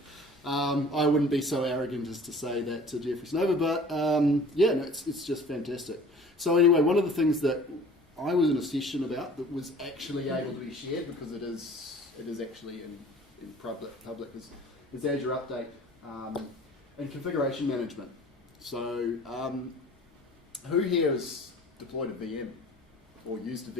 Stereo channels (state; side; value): normal; both; correlation 0.47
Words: I wouldn't be so arrogant as to say that to Jeffrey Snover, but it's just fantastic. So anyway, one of the things that I was in a session about that was actually able to be shared, because it is actually in public is Azure Update and configuration management. So who here has deployed a VM or used a